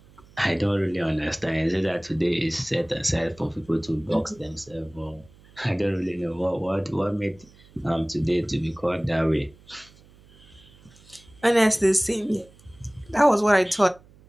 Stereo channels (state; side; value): noise; right; hum, 26 dB below the sound